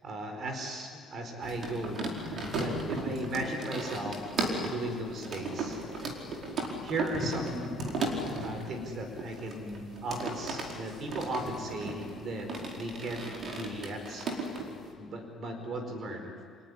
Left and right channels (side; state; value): both; normal; correlation 0.56